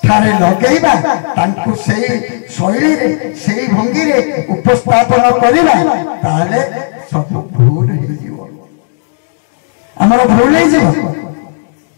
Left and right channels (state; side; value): silent; right; digital silence